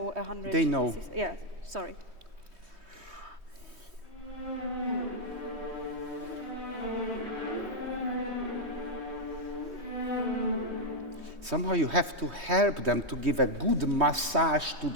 100. They know. Yeah, sorry. Somehow you have to help them to give a good massage to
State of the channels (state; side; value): late; left; 3.2 ms